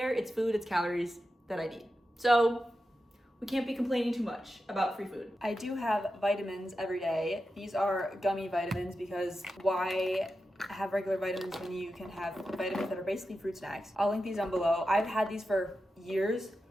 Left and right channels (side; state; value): both; normal; correlation 0.90